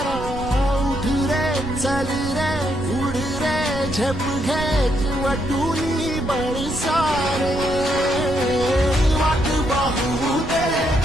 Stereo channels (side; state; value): right; noise; rumble, 10 dB below the sound